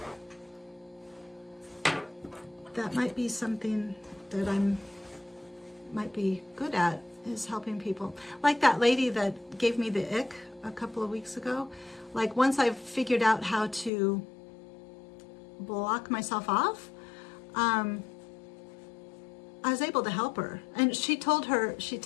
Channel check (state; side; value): drops out; right; at 13.9 s